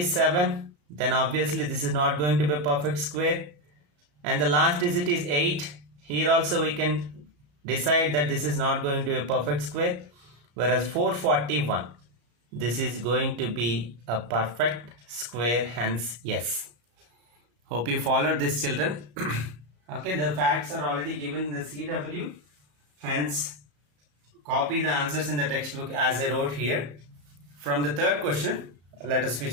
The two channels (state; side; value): late; left; 34 ms